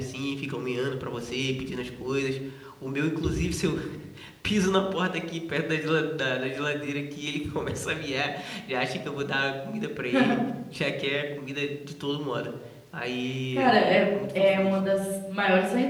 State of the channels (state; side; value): identical; both; correlation 1.00